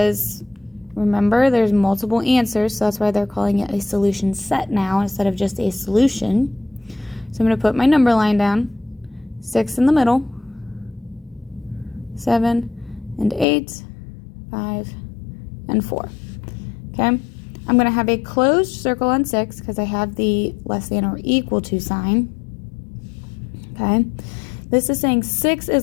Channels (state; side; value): drops out; right; at 13.5 s